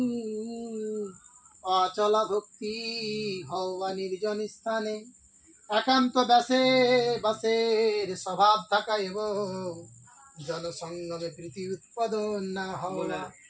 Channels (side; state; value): both; identical; correlation 1.00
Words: অচলা ভক্তি হওয়া নির্জন স্থানে একান্ত বাসের স্বভাব থাকা এবং জনসঙ্গমে প্রীতি উৎপাদন না হওয়া।